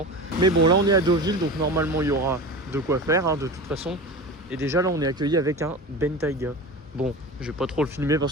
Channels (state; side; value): normal; both; correlation 0.30